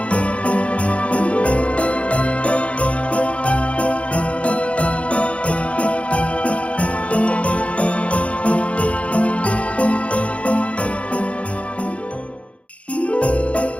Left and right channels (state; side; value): late; right; 0.062 ms